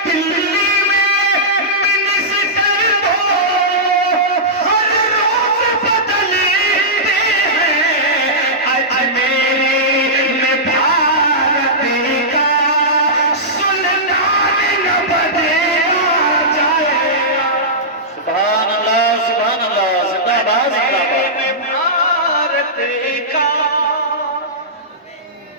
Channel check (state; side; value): normal; both; correlation -0.14